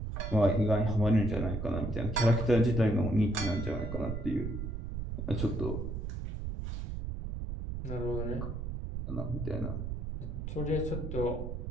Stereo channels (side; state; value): right; noise; rumble, 4 dB below the sound